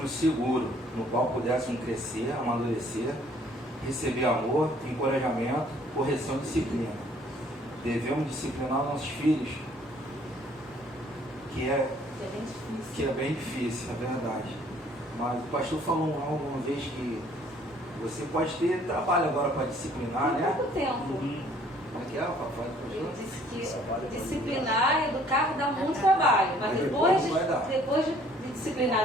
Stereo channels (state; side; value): normal; both; correlation 0.59